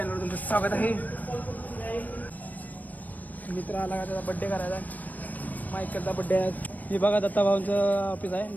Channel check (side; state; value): right; late; 0.080 ms